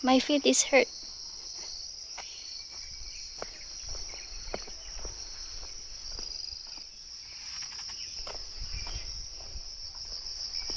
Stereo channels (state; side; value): identical; both; correlation 1.00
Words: My feet is hurt.